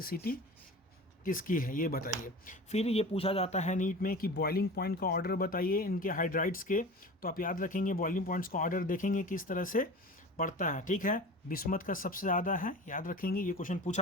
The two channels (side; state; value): both; normal; correlation 0.35